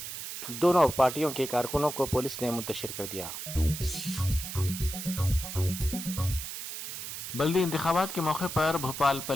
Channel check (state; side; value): noise; right; hiss, 7 dB below the sound